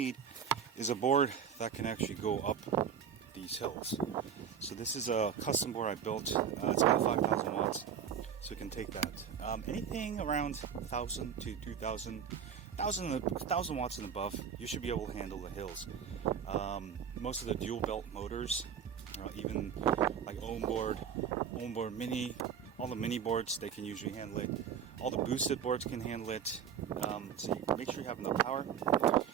is a board that can actually go up these hills. So this is a custom board I built. It's got 5,000 watts, so you can take that. Anything around 1,000 to 2,000, 1,000 watts and above, you should be able to handle the hills. Most of the dual belt motors, even like onboard mini, all the mini boards, they can usually handle it. All the boosted boards can handle it. So you make sure you have enough power.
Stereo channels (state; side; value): quieter; left; 7.8 dB